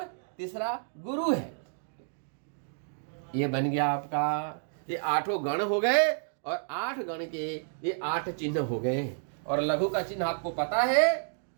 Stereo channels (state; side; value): silent; left; digital silence